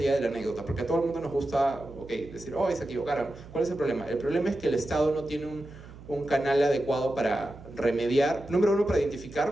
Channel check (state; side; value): noise; right; hum, 18 dB below the sound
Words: de la anécdota? Porque a todo el mundo nos gusta decir, oh, se equivocaron. ¿Cuál es el problema? El problema es que el Estado no tiene un canal adecuado para remediar, número 1, para